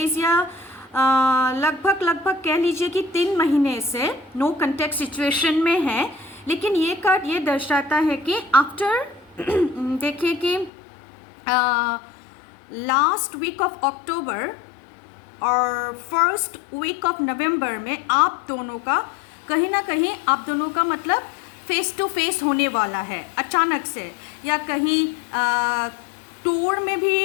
या लगभग कह लीजिए कि 3 महीने से नो कॉन्टेक्ट सिचुएशन में है। लेकिन ये कार्ड ये दर्शाता है कि आफ्टर देखिए कि लास्ट वीक ऑफ अक्टूबर और फर्स्ट वीक ऑफ नवंबर में आप दोनों का कहीं ना कहीं आप दोनों का मतलब फेस टू फेस होने वाला है अचानक से, या कहीं टूर में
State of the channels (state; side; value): drops out; right; at 10.7 s